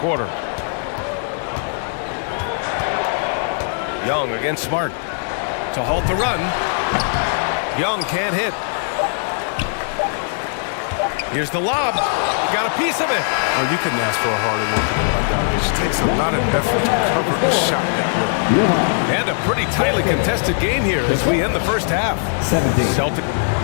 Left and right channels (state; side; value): silent; right; digital silence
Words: Young against Smart to halt the run. Young can't hit. Here's the lob. He got a piece of it. Well, you couldn't ask for a harder worker than Bogdanovich. It takes a lot of effort to cover a shot that way. And a pretty tightly contested game here as we end the first half. 17. Celtic.